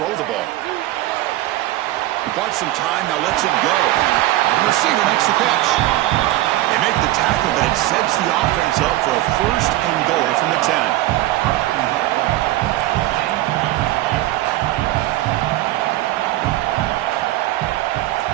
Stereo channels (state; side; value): quieter; left; 16.2 dB